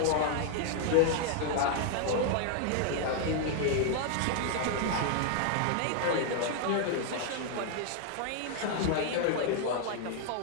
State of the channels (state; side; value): different; both; correlation 0.00